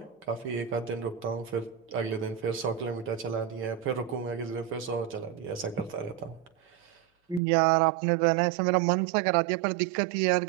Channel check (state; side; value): drops out; left; at 7.4 s